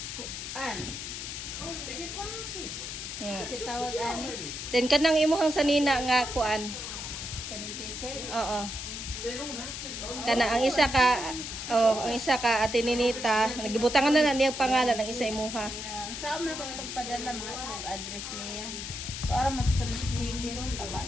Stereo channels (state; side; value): noise; left; hiss, 7 dB below the sound